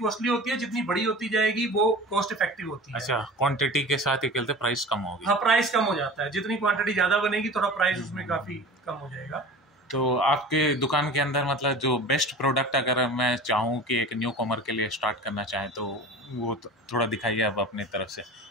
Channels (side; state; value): both; normal; correlation 0.37